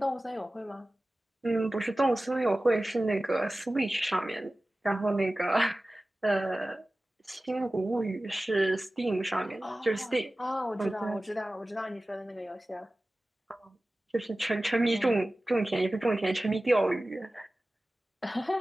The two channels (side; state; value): both; normal; correlation 0.96